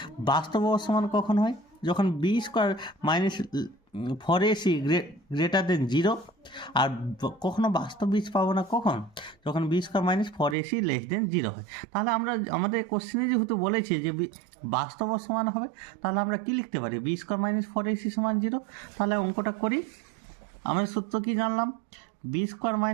বাস্তব ও সমান কখন হয়, যখন b square minus 4ac greater than 0। আর কখনো বাস্তব বীজ পাবো না কখন, যখন b square minus 4ac less than 0 হয়। তাহলে আমরা আমাদের কোশ্চেনে যেহেতু বলেছি যে বাস্তব ও সমান হবে, তাহলে আমরা কি লিখতে পারি, বি স্কোয়ার মাইনাস 4ac সমান 0। তাহলে অঙ্কটা করি। আমরা সূত্র কি জানলাম, বি স্কোয়ার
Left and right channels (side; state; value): left; drops out; at 10.6 s